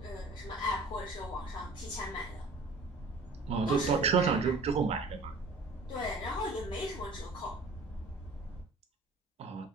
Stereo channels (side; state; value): left; quieter; 3.1 dB